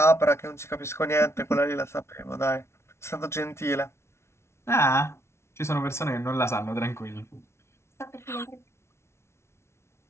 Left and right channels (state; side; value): late; right; 0.13 ms